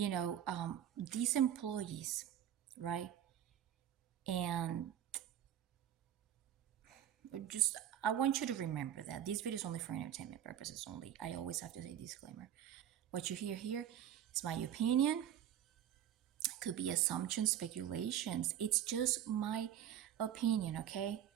employees, right? And just, I want you to remember that this video is only for entertainment purposes only. I always have to say disclaimer. What you hear here is my opinion. Could be assumptions, speculations. It's just my opinion, okay?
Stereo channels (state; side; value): quieter; left; 10.5 dB